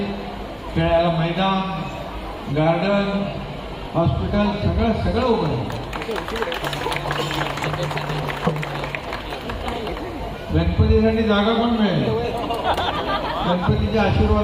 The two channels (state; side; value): identical; both; correlation 1.00